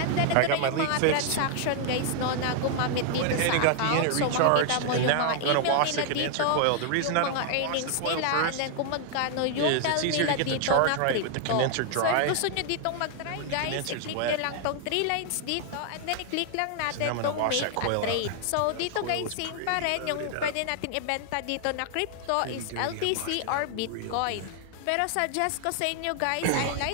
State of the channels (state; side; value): different; both; correlation 0.00